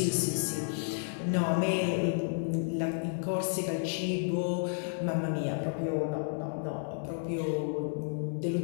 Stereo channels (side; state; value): right; silent; digital silence